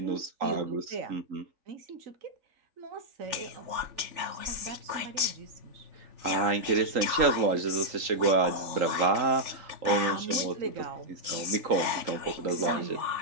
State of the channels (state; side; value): late; left; 3.4 ms